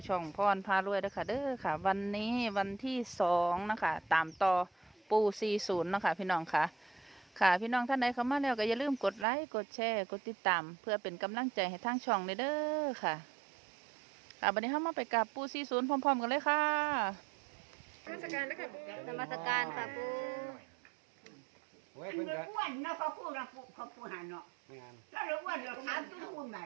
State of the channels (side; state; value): left; drops out; at 9.2 s